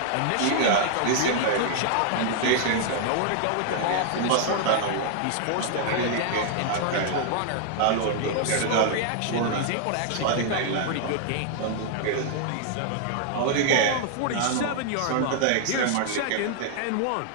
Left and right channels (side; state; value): both; different; correlation -0.01